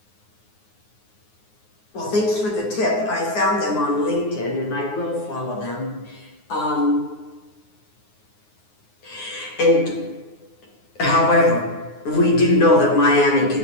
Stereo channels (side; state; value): right; late; 9.5 ms